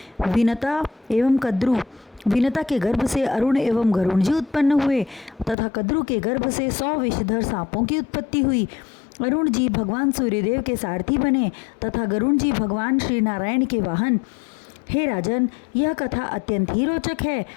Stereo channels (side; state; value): right; drops out; at 5.6 s